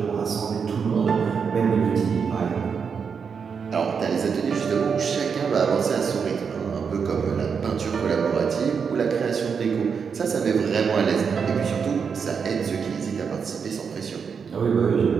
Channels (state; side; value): quieter; left; 6.2 dB